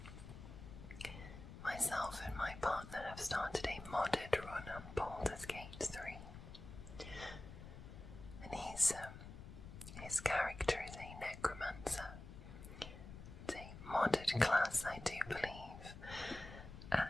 myself and my partner have started a modded run on Baldur's Gate 3. And his character is a necromancer. It's a modded class, I do believe.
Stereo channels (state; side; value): noise; left; rumble, 13 dB below the sound